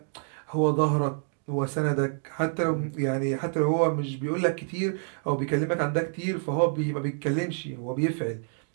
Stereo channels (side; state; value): left; silent; 60 dB below the other